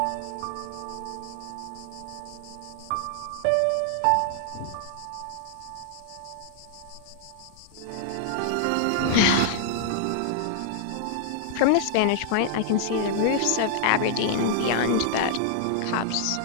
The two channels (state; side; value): different; both; correlation -0.01